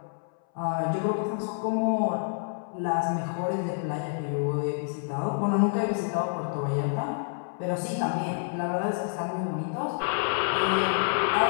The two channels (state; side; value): silent; right; 59 dB below the other